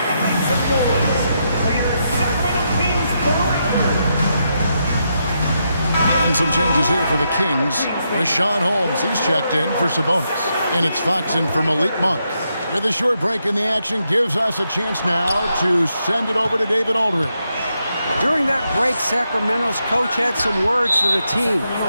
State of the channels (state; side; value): inverted; both; correlation -0.82